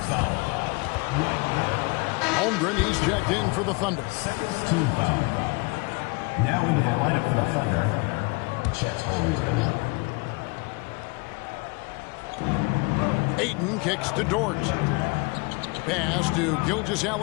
Holmgren, he's checked in for the Thunder. Second team foul. Now into the lineup for the Thunder, Chet Holmgren. Ayton kicks to Dort. Pass to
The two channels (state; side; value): quieter; right; 27.7 dB